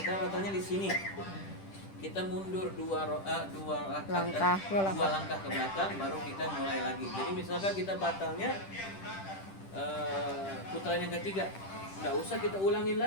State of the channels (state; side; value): late; right; 10 ms